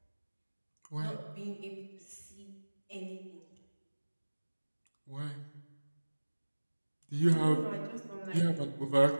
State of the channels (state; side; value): inverted; both; correlation -1.00